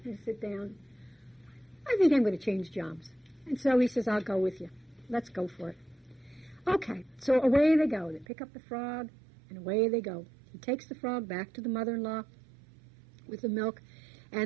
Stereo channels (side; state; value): left; drops out; at 8.2 s